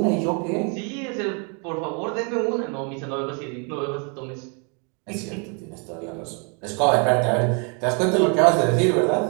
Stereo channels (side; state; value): left; quieter; 36.4 dB